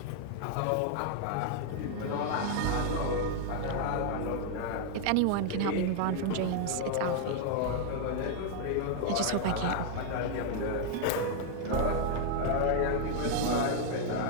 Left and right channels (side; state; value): both; different; correlation 0.00